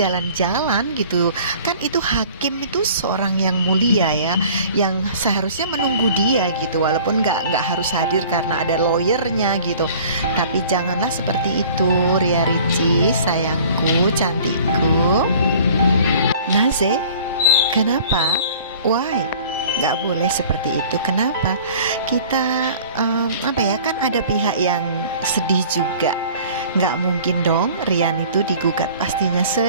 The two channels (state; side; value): inverted; both; correlation -0.48